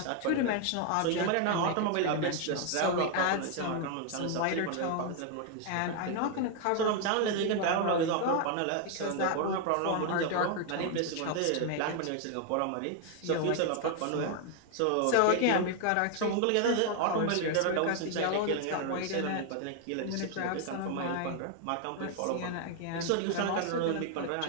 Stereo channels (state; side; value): different; both; correlation 0.00